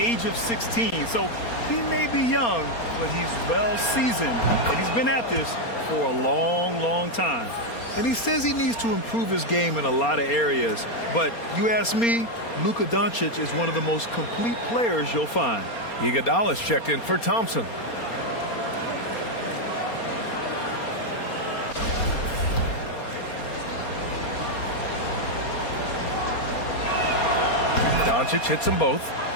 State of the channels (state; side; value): late; right; 4.3 ms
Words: of 16. So he may be young, but he's well seasoned. And he's been at this for a long, long time. And he says he needs to improve his game in a lot of areas. But you ask me, Luka Doncic is one of the most complete players you'll find. Iguodala's checked in for Thompson. Doncic hits them both.